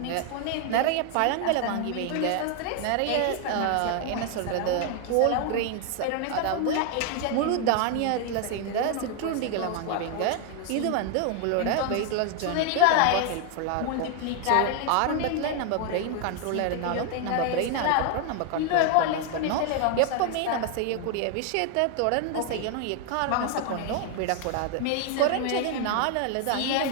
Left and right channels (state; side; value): different; both; correlation 0.00